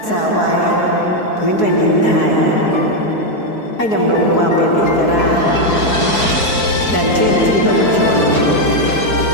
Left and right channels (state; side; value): late; right; 4.7 ms